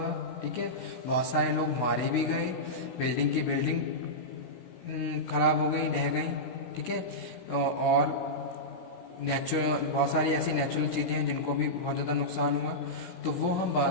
ठीक है, बहुत सारे लोग मारे भी गए, बिल्डिंग की बिल्डिंग खराब हो गई, ढह गई। ठीक है, और नेचुरल बहुत सारी ऐसी नेचुरल चीज़ें हैं जिनको भी बहुत ज़्यादा नुकसान हुआ। तो वो हम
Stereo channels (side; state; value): right; late; 16 ms